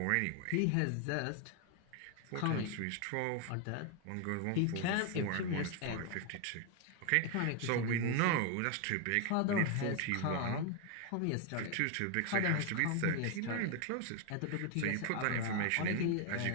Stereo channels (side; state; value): both; different; correlation 0.01